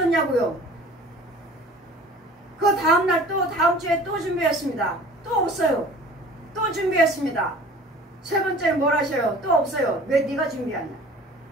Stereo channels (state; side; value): normal; both; correlation 0.45